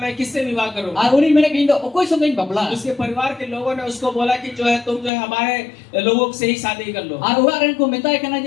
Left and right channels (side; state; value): right; drops out; at 5.1 s